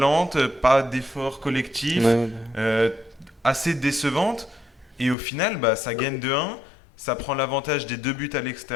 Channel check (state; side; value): drops out; right; at 5.2 s